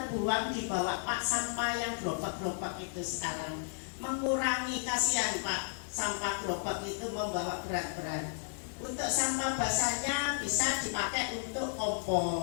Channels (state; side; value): silent; right; digital silence